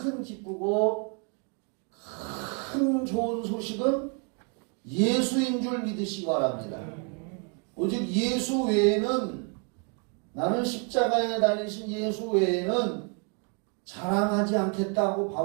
기쁘고 큰 좋은 소식은 예수인 줄 믿으시기 바랍니다. 오직 예수 외에는, 나는 십자가에 달리신 예수 외에는 자랑하지 않겠다고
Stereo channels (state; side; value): quieter; left; 37.6 dB